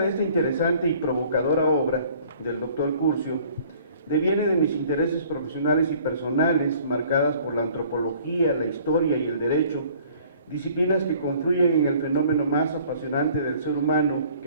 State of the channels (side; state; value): both; inverted; correlation -0.54